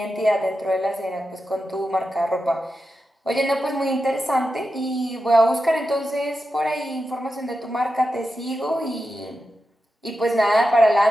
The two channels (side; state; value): both; normal; correlation 0.90